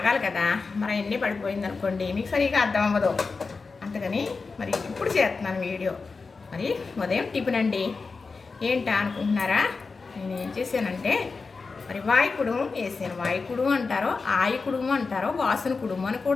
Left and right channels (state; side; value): quieter; right; 4.4 dB